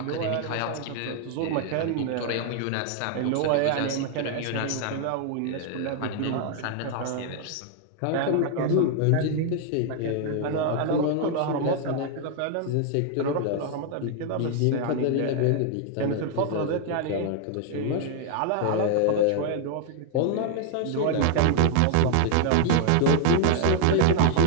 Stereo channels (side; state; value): both; different; correlation 0.00